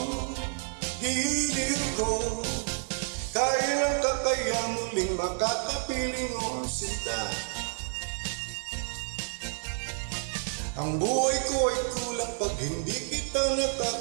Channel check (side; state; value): left; silent; 58 dB below the other